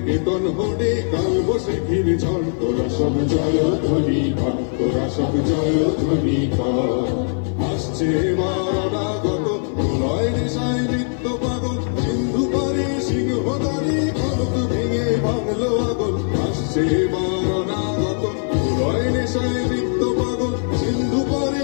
কেতন হনে কাল বৈশাখীর ঝড়। তোরা সব জয় ধ্বনি কর, তোরা সব জয় ধ্বনি কর। আসছে মারাগত প্রলয় নেশায় নৃত্য পাগল, সিন্ধু পারে সিংহদারি খলক ভেঙে ভাঙলো আগল। আসছে মারাগত প্রলয় নেশায় নৃত্য পাগল, সিন্ধু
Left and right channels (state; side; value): silent; right; 55 dB below the other